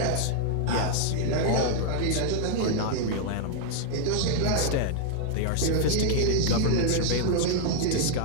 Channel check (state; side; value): different; both; correlation -0.01